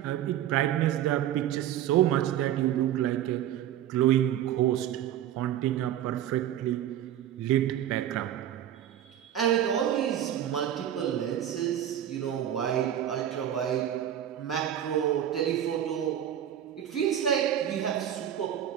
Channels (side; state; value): left; quieter; 11.0 dB